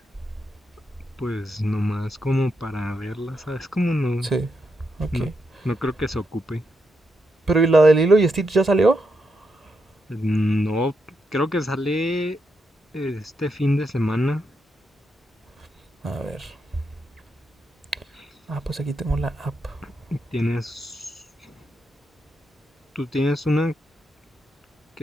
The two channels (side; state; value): both; normal; correlation 0.82